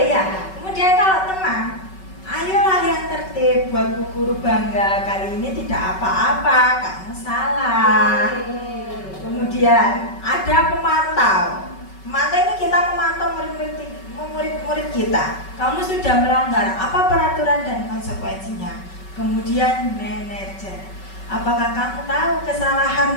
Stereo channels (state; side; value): late; right; 5.3 ms